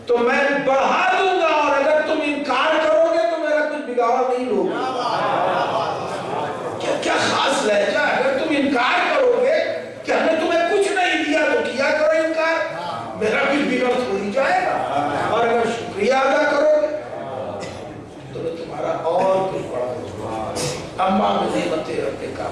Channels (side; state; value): both; identical; correlation 1.00